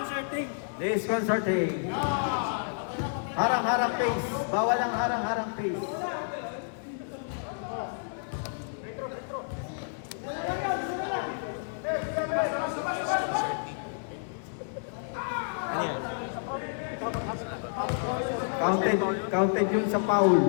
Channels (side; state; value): right; silent; digital silence